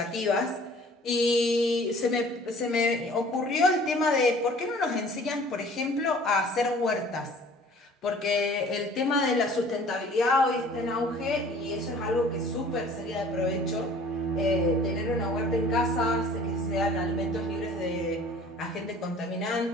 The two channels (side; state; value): both; normal; correlation 0.50